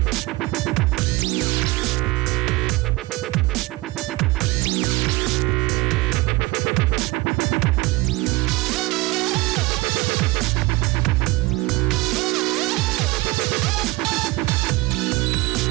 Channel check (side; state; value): left; quieter; 22.2 dB